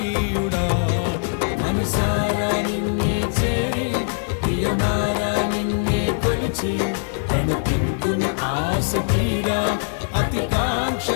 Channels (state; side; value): silent; right; digital silence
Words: మనసారా నిన్నే చేరి ప్రియమారా నిన్నే కొలిచి నన్ను తింటును ఆశ తీరా అతి